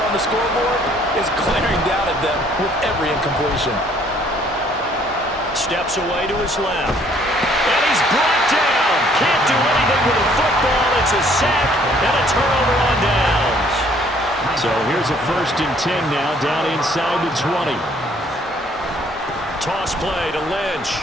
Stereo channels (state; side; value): normal; both; correlation 0.61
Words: the scoreboard is glaring down at them with every incompletion. Steps away to his left. And he's brought down. Can't do anything with a football. It's a sack and a turnover on downs. So here's a 1st and 10 now, down inside the 20. Toss play to Lynch.